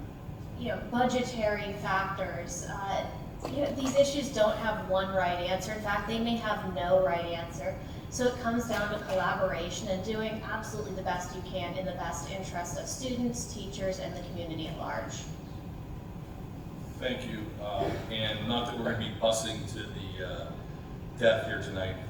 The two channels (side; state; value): both; identical; correlation 1.00